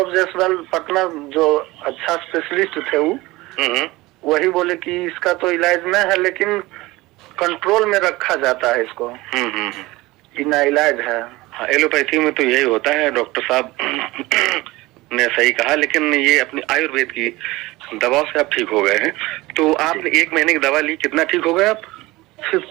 जायसवाल पटना जो अच्छा स्पेशलिस्ट थे वो वही बोले कि इसका तो इलाज नहीं है, लेकिन कंट्रोल में रखा जाता है इसको। बिना इलाज है। हाँ, एलोपैथी में तो यही होता है। डॉक्टर साहब ने सही कहा, लेकिन ये अपनी आयुर्वेद की दवाओं से आप ठीक हो गए हैं। तो आपने 1 महीने की दवा ली, कितना ठीक हो गए आप?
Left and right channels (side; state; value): left; quieter; 20.2 dB